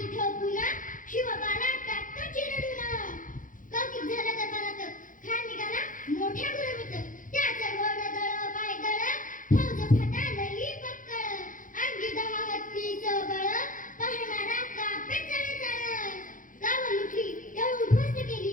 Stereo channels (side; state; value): right; late; 0.38 ms